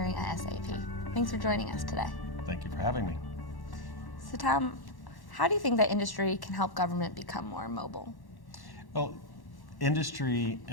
at SAP. Thanks for joining us today. Thank you for having me. So Tom, how do you think that industry can help government become more mobile? Well, industry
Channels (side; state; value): right; late; 1.1 ms